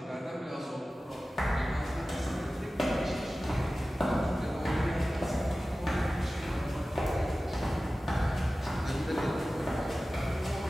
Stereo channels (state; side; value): normal; both; correlation 0.96